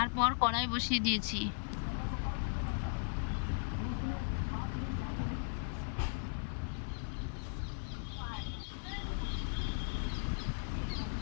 কড়াই বসিয়ে দিয়েছি।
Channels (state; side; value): silent; right; 53 dB below the other